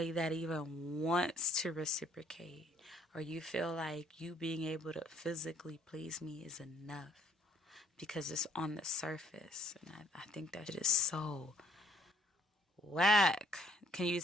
that even wants to reciprocate. Or you feel like you being able to physically please me is enough. Because it's on the surface. And I think that shit is so whack. Can you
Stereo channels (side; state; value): both; normal; correlation 0.64